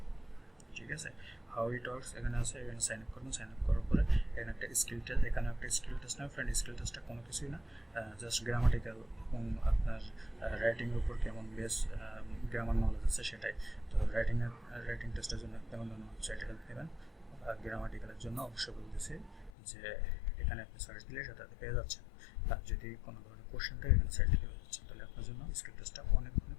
ঠিক আছে, হাউ ইট ওয়ার্কস এখানে আছে, এখানে সাইন আপ করবেন। সাইন আপ করার পরে এখানে একটা স্কিল টেস্ট, এখানে একটা স্কিল টেস্ট না ফ্রেন্ড, স্কিল টেস্টটা কোনো কিছুই না, জাস্ট গ্রামাটিক্যাল এবং আপনার রাইটিংয়ের উপর কেমন বেস গ্রামার নলেজ আছে সেটাই। তো রাইটিং টেস্টের জন্য কেমন ধরনের ওয়েবসাইটে হেল্প নেবেন, আর গ্রামাটিক্যালের জন্য অবশ্যই বলতেছি যে এখানে আপনি সার্চ দিলে সেটাতে পেয়ে যাচ্ছেন। আর যদি কোনো ধরনের কোশ্চেন থাকে এখানে সার্চ দিলে পেয়ে যাচ্ছেন, তাহলে আপনার জন্য স্কিল টেস্টটা অনেক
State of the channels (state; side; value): drops out; right; at 19.5 s